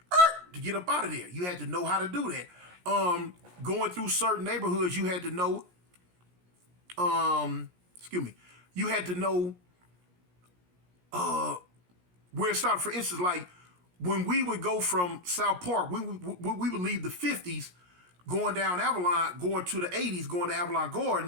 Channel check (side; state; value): left; late; 17 ms